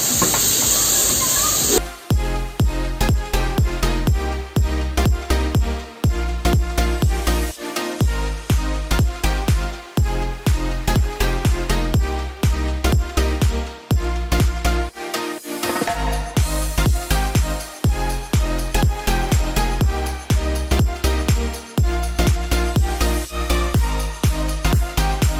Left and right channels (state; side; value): identical; both; correlation 1.00